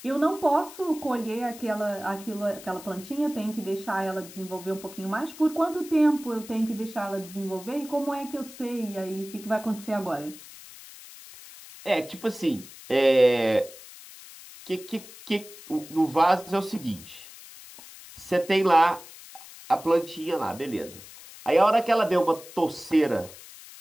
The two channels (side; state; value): left; noise; hiss, 17 dB below the sound